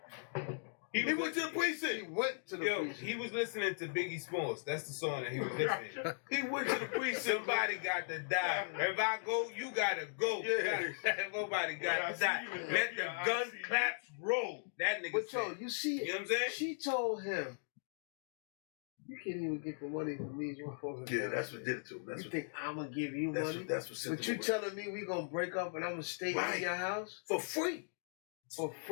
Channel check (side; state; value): right; silent; digital silence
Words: He went to the precinct. He went to the precinct. He was listening to Biggie Smalls. That's the song that he was listening to. He went to the precinct. Somebody got to die. If I go, you gotta go. Yeah. Nobody got to die. Let the gun claps roll. That nigga But said. you see, You know what I'm saying? she told him, you can't even get the money from these motherfuckers. Yeah, that's what did it to him. You think I'm gonna give you money? That's what sent But you telling me we gonna break up and I'm gonna stay in your house? for free. For